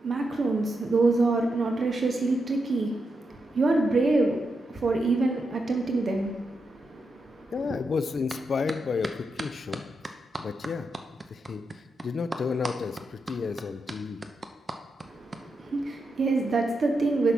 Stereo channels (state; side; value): normal; both; correlation 0.85